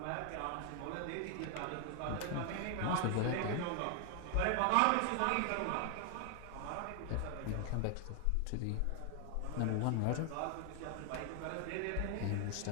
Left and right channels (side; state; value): both; different; correlation 0.00